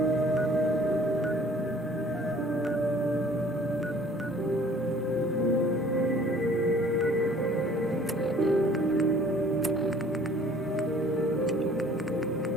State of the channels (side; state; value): both; normal; correlation 0.53